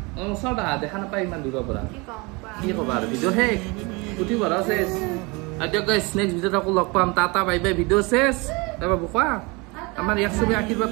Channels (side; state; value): left; quieter; 27.0 dB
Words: ওচৰত আহা দেখা নাপায় ইমান দূৰৰ পৰা কি ক'বা আৰু ভিডিঅ' শেষ পুথি ভৰা চেছ আৰু দিয়ক গাইছ নেক্সট ভিডিঅ'ত আকৌ লগ পাম টাটা বাই বাই ভিডিঅ' চেছ তাৰপৰা কোৱা আমাৰ ইয়াক চবে আশীৰ্বাদ